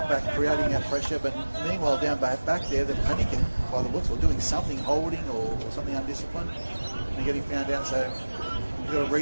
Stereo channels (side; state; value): both; inverted; correlation -1.00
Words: creating that pressure, but meanwhile down back there, they're panicking by the looks, or doing something, holding or something undisciplined. And they're getting found out, so you've got to